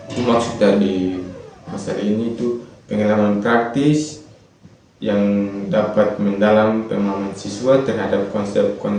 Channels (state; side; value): identical; both; correlation 1.00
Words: Itu maksud dari masalah ini itu pengalaman praktis yang dapat mendalam pemahaman siswa terhadap